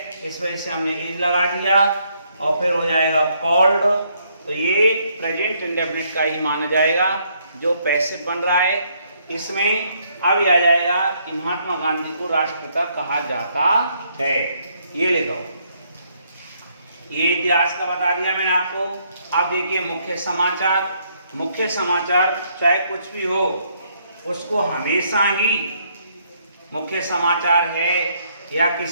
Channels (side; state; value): both; inverted; correlation -0.71